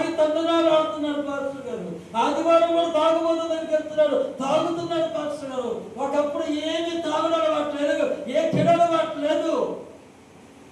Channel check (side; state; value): both; identical; correlation 1.00